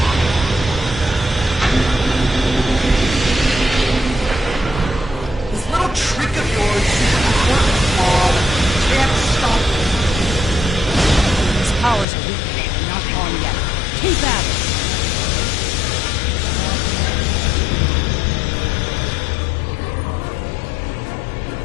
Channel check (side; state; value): right; drops out; at 12.1 s